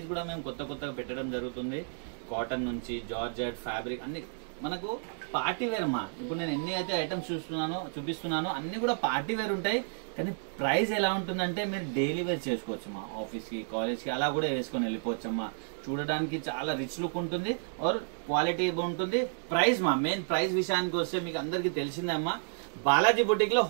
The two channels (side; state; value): left; silent; digital silence